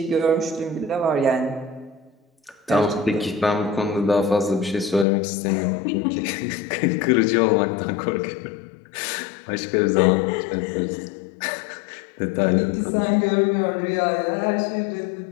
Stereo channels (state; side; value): drops out; right; at 5.1 s